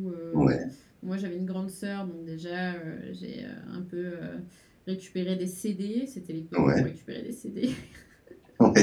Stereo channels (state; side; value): identical; both; correlation 1.00